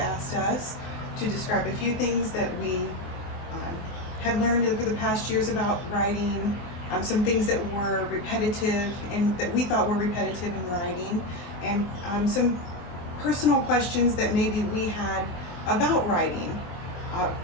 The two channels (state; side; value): late; right; 23 ms